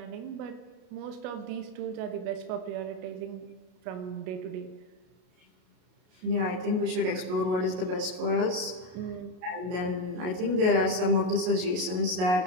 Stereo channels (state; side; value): late; left; 33 ms